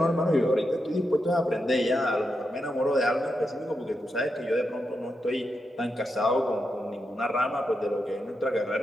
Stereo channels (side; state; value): both; normal; correlation 0.86